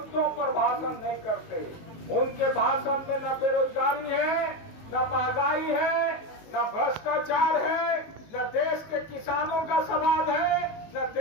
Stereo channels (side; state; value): right; late; 19 ms